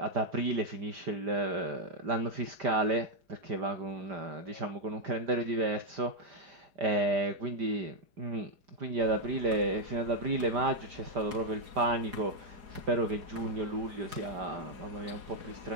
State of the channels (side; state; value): left; late; 4.8 ms